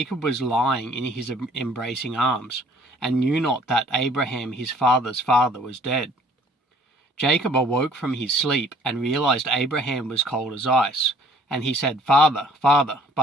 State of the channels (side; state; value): both; normal; correlation 0.57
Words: was lying in his embracing arms, and knew not that Abraham his father's father was dead. Jacob awoke from his sleep and realized Abraham was cold as ice, and he said, "Father, Father,"